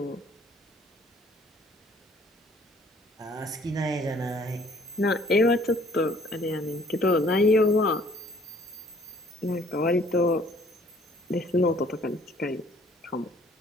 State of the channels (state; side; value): normal; both; correlation 0.58